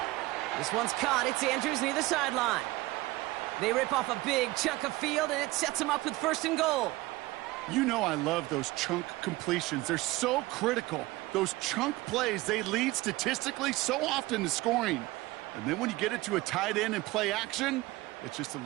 This one's caught. It's Andrews near the sideline. They rip off a big chunk of field, and it sets them up with 1st and goal. You know I love those chunk completions. They're so critical. Those chunk plays, they lead statistically so often to scoring. And then when you get it to a tight end and play action, it's just a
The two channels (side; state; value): left; quieter; 19.7 dB